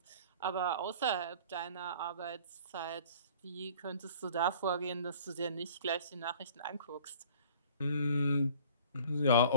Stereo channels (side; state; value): both; inverted; correlation -0.49